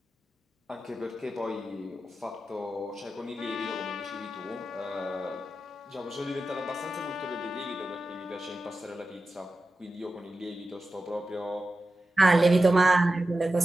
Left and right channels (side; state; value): both; normal; correlation 0.92